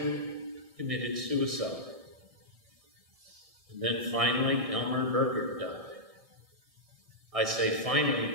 committed suicide. And then finally, Elmer Berger died. I say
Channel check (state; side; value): late; left; 1.6 ms